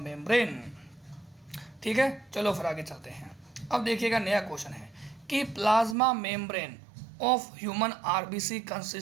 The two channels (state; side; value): drops out; left; at 6.0 s